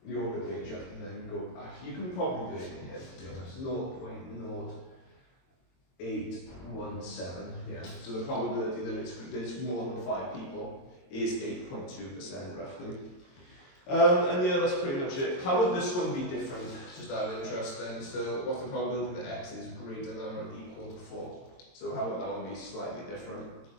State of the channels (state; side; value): late; right; 22 ms